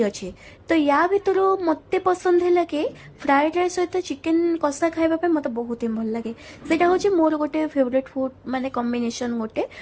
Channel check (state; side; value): identical; both; correlation 1.00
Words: ଅଛି। ତ ୟା ଭିତରୁ ମୋତେ ପସନ୍ଦ ହେଲା କି ଫ୍ରାଏଡ୍ ରାଇସ୍ ସହିତ ଚିକେନ୍ କଷା ଖାଇବା ପାଇଁ ମୋତେ ବହୁତ ହିଁ ଭଲ ଲାଗେ। ସେଇଟା ହେଉଛି ମୋର ଗୋଟେ ଫେଭରେଟ୍ ଫୁଡ୍ ମାନେ କମ୍ବିନେସନ୍ ଗୋଟେ,